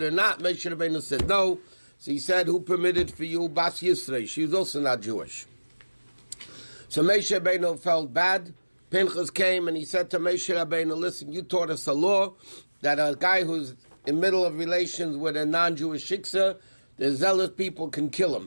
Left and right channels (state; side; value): inverted; both; correlation -1.00